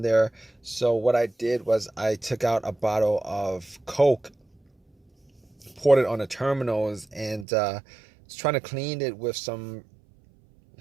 there. So what I did was I took out a bottle of Coke, poured it on the terminals, and was trying to clean it with some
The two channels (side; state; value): left; drops out; at 7.5 s